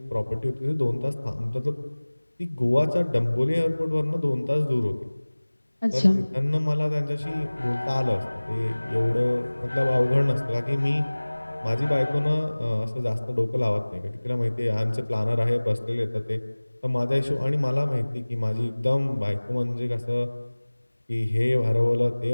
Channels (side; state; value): both; inverted; correlation -1.00